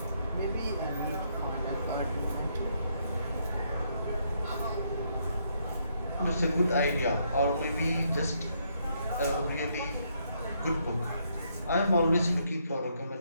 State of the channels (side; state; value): both; inverted; correlation -0.74